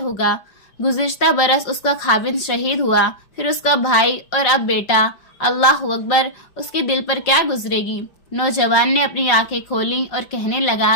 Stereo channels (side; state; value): right; late; 5.5 ms